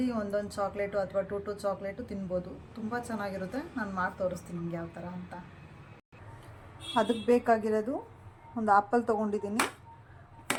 ಒಂದೊಂದು ಚಾಕ್ಲೇಟು ಅಥವಾ ಟೂ ಚಾಕ್ಲೇಟು ತಿನ್ಬೋದು. ತುಂಬ ಚೆನ್ನಾಗಿರುತ್ತೆ. ನಾನು ಮಾಡಿ ತೋರಿಸ್ತೀನಿ ನಿಮ್ಗೆ ಯಾವ ಥರ ಅಂತ. ಅದಕ್ಕೆ ಬೇಕಾಗಿರೋದು, ಒಂದು ಆ್ಯಪಲ್ ತೊಗೊಂಡಿದ್ದೀನಿ,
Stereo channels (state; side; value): identical; both; correlation 1.00